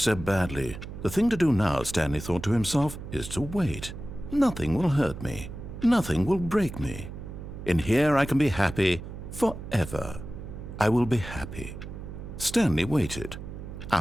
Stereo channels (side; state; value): right; noise; hum, 10 dB below the sound